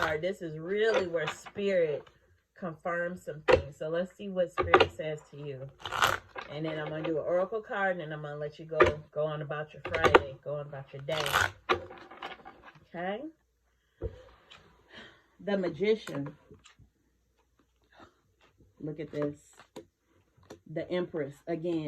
this is really where Spirit confirms some things. So let's see what Spirit says to you. And then I'm going to do an oracle card, and then I'm going to let you go on about your Friday. Go on about your day. Okay? The Magician. Look at this. The Empress.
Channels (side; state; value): both; identical; correlation 1.00